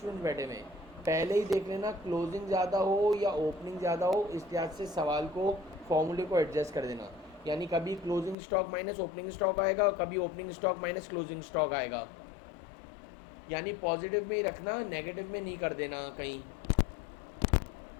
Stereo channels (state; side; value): drops out; right; at 8.3 s